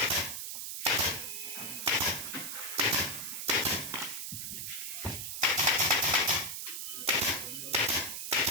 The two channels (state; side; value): noise; right; hiss, 5 dB below the sound